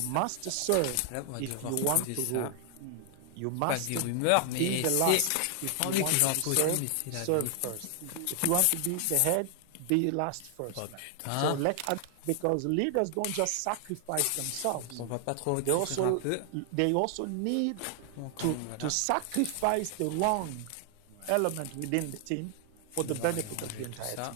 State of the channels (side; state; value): both; different; correlation 0.00